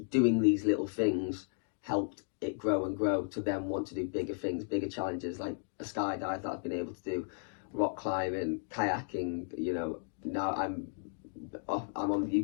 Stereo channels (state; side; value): silent; right; digital silence